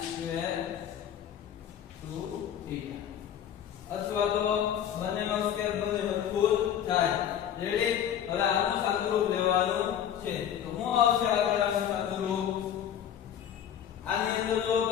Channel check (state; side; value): quieter; right; 9.7 dB